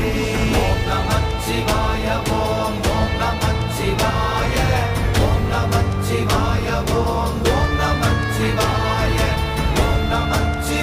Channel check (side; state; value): both; identical; correlation 1.00